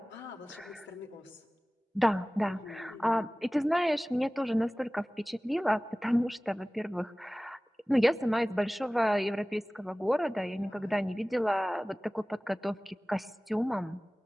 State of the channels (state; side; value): normal; both; correlation 0.98